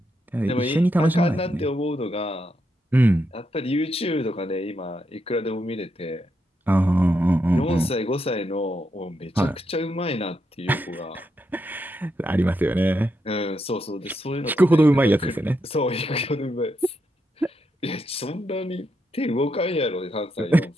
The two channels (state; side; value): normal; both; correlation 0.82